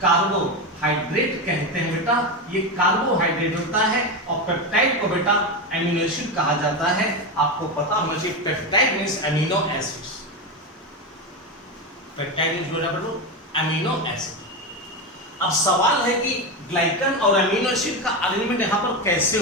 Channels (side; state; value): both; normal; correlation 0.16